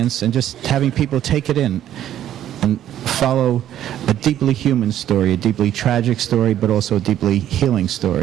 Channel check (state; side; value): quieter; left; 11.5 dB